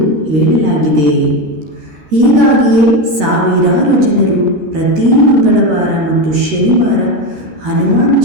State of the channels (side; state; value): left; late; 13 ms